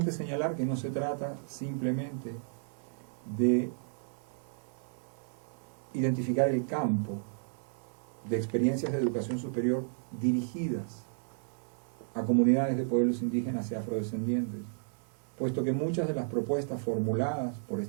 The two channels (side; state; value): left; silent; digital silence